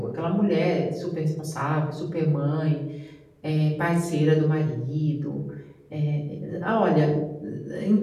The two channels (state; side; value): identical; both; correlation 1.00